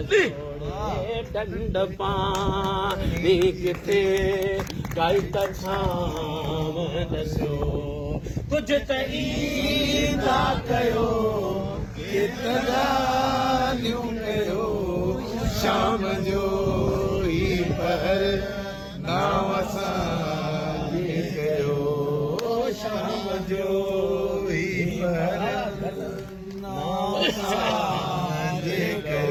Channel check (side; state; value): both; identical; correlation 1.00